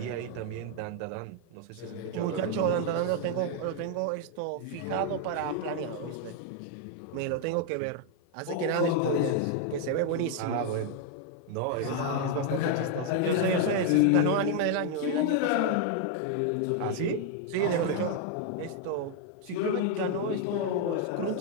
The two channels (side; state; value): both; different; correlation 0.00